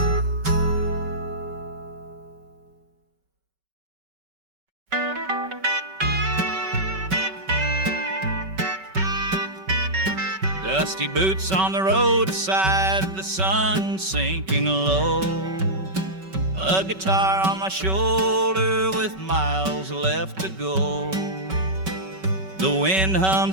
Dusty boots on the roadside, the sun sinking low. A guitar on my shoulder with miles left to go. The wind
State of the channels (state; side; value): late; left; 5.3 ms